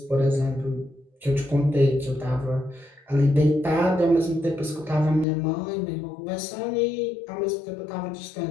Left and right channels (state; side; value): drops out; right; at 5.2 s